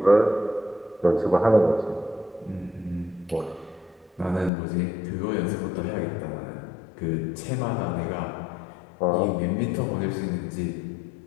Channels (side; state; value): right; drops out; at 4.5 s